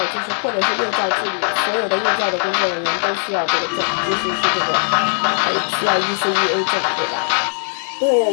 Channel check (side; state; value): right; silent; digital silence